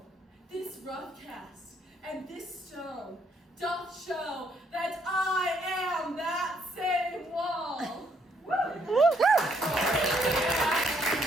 this rough cast, and this stone doth show that I am that same wall. The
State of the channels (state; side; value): normal; both; correlation 0.70